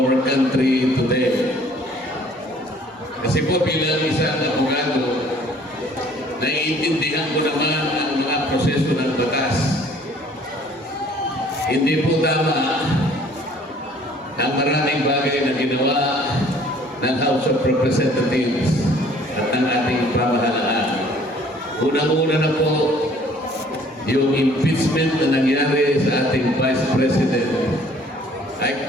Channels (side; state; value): both; normal; correlation 0.56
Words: country today. Kasi po bilang isang abogado, naiintindihan ko naman ang mga proseso ng batas. Hindi po tama ang maraming bagay na ginawa ng House of Representatives at ng ating pamahalaan. Unang-una na po yung impeachment na nangyari sa ating Vice President.